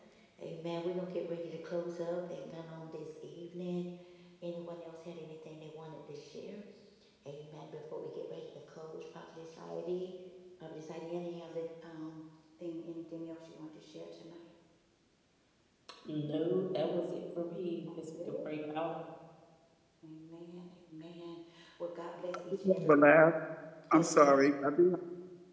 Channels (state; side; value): identical; both; correlation 1.00